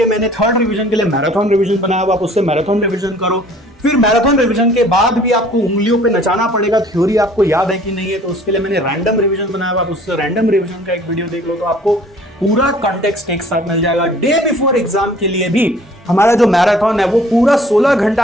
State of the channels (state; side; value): normal; both; correlation 0.53